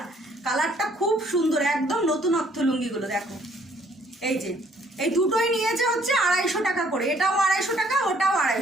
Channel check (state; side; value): normal; both; correlation 0.63